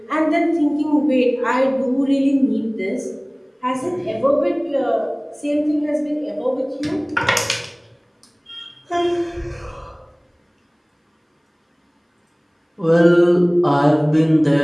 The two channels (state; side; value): identical; both; correlation 1.00